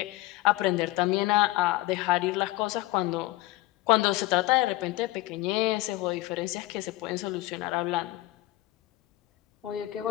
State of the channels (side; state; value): right; quieter; 17.8 dB